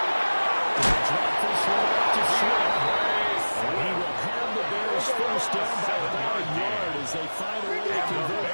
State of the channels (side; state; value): both; inverted; correlation -1.00